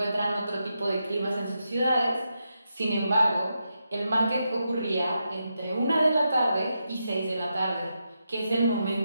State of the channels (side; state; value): both; inverted; correlation -0.85